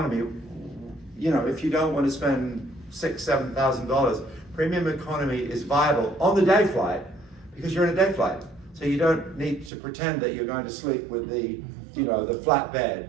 you know, if you don't want to spend $6,000, $7,000, premium economy is viable on the day flight because you're in a day flight. So you don't need to pretend that you're going to sleep with the, you know, the flat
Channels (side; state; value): left; drops out; at 9.7 s